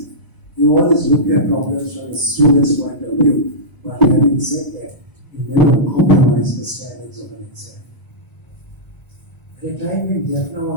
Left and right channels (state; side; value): late; right; 1.0 ms